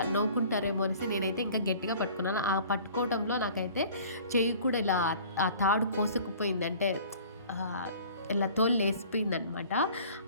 నవ్వుకుంటారేమో అనేసి నేనైతే ఇంకా గట్టిగా పట్టుకున్నాను. ఆ పట్టుకోవడంలో నాకైతే చెయ్యి కూడా ఇలా ఆ తాడు కోసుకుపోయింది. అంటే ఆహ్, ఇలా తోలు లేసిపోయిందనమాట.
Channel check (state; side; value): inverted; both; correlation -0.48